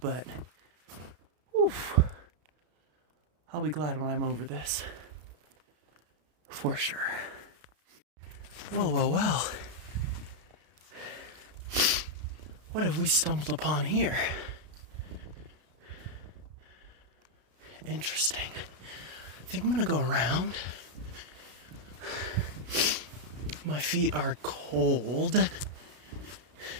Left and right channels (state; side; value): late; left; 33 ms